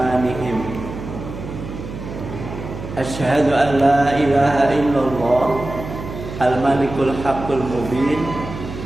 Asyhadu an la ilaha illallah al-malikul haqqul mubin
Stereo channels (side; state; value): right; noise; hum, 10 dB below the sound